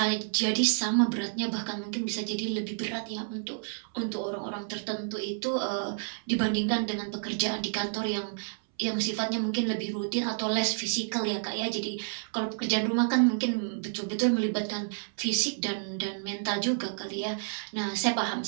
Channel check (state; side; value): silent; left; 58 dB below the other